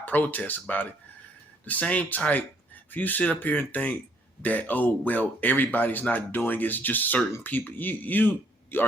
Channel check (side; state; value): both; normal; correlation 0.66